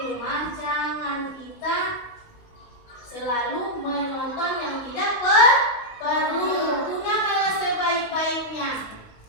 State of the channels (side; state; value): right; late; 19 ms